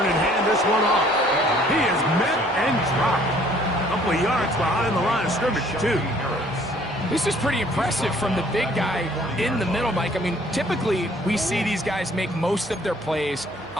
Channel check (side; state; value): right; noise; hum, 25 dB below the sound